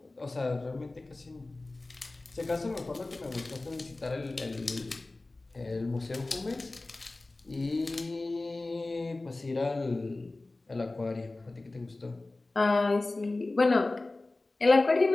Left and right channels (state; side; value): quieter; right; 3.0 dB